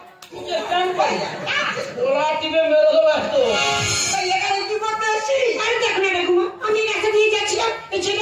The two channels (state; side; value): identical; both; correlation 1.00